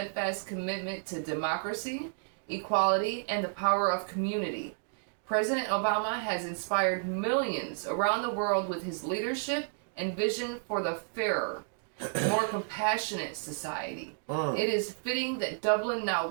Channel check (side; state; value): left; silent; digital silence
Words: commitment to democracy, equality, and the power of community. President Obama has inspired millions around the world with his leadership and vision for the fairer, more compassionate society. It is fitting that Dublin now